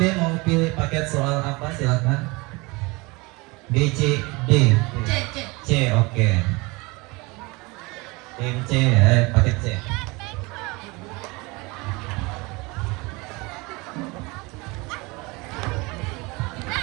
mau pilih paket soal apa? Silakan. B, C, D. C, oke. Tim C, paket C.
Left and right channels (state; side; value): quieter; left; 25.3 dB